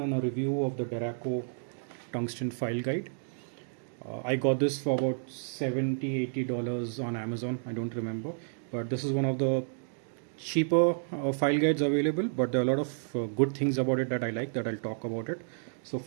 and a review of the Derraco tungsten file guide. I got this for about $70-80 on Amazon. I don't remember, but this is one of the cheaper file guides available, but there are a lot of good things about it that I like that I'll talk about it. So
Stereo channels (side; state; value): left; silent; digital silence